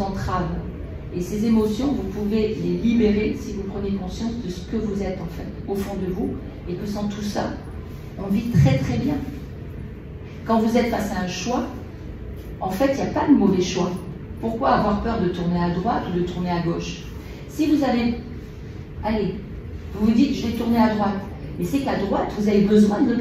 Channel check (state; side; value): identical; both; correlation 1.00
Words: entravent. Et ces émotions, vous pouvez les libérer si vous prenez conscience de ce que vous êtes, en fait, au fond de vous, et que sans tout ça, on vit très très bien. Quand vous êtes face à un choix, en fait, il n'y a pas de mauvais choix. Pourquoi avoir peur de tourner à droite ou de tourner à gauche? Si vous avez, allez, vous vous dites, je vais tourner à droite, mais c'est qu'à droite, vous avez besoin